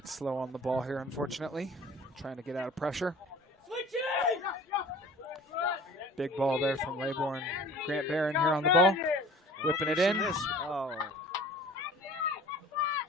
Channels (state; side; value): normal; both; correlation 0.45